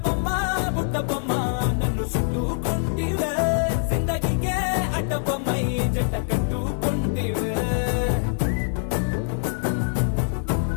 బొమ్మ నన్ను చుట్టుకుంటివే జిందగీకే అడ్డ బొమ్మై జంట కట్టుకుంటివే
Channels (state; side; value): silent; right; digital silence